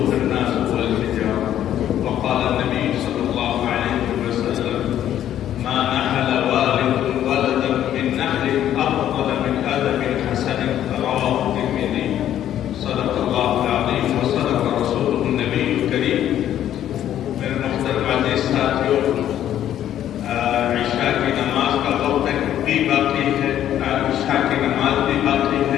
الناس والحجارة وقال النبي صلى الله عليه وسلم ما نحل والد ولدا من نحل أفضل من أدب حسن رواه الترمذي صدق الله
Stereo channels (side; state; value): right; quieter; 11.2 dB